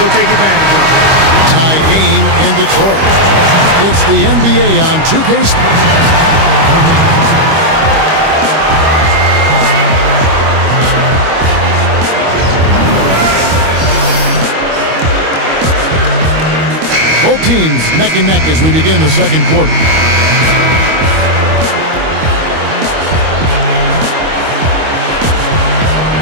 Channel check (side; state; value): left; late; 25 ms